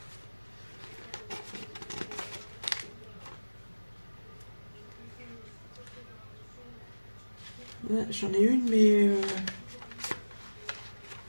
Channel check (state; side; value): inverted; both; correlation -1.00